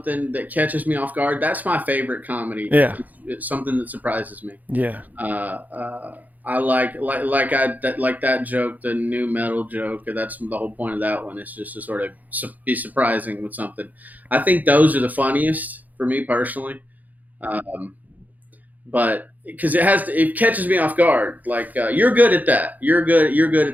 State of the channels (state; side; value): late; left; 0.081 ms